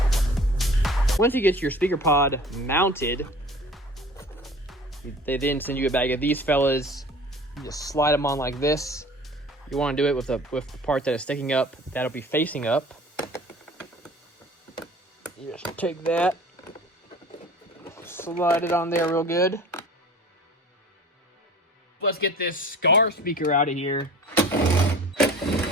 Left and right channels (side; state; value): both; normal; correlation 0.44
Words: Once you get your speaker pod mounted, they then send you a bag of these fellas. You just slide them on like this. You want to do it with the part that is sticking up. That'll be facing up. You just take that, slide it on there real good. Let's get this Scar speaker out of here.